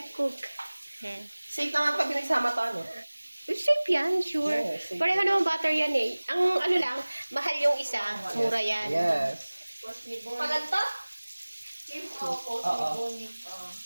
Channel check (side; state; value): both; inverted; correlation -1.00